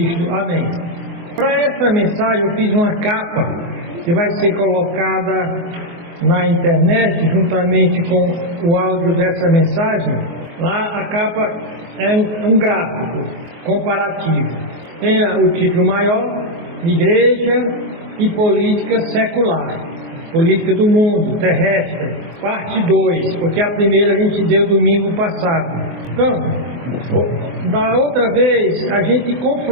Amém. Para essa mensagem eu fiz uma capa que vai ser colocada na internet juntamente com o áudio dessa mensagem. Lá a capa é um gráfico comparativo. Tem o título maior: Igreja e Política Secular, Política do Mundo Terrestre, parte 2, porque a primeira a gente deu domingo passado. Então, da outra vez a gente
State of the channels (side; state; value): left; late; 24 ms